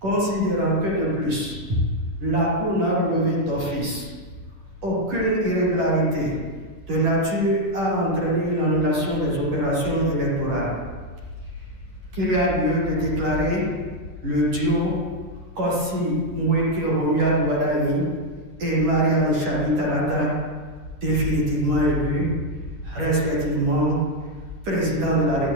que de plus, la Cour n'a relevé d'office aucune irrégularité de nature à entraîner l'annulation des opérations électorales, qu'il y a lieu de déclarer le duo Kossi Mweke Romia Douadaï et Mariam Chabi Talata définitivement élus, respectivement président de la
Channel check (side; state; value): left; late; 10 ms